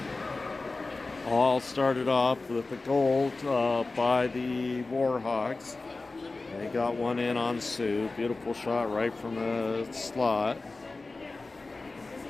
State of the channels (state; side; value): quieter; right; 3.5 dB